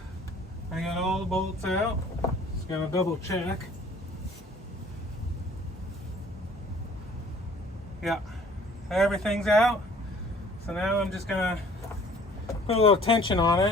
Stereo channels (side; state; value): both; normal; correlation 0.53